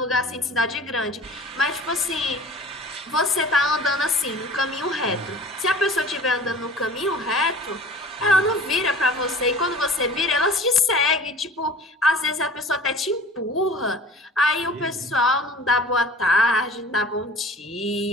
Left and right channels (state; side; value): normal; both; correlation 0.44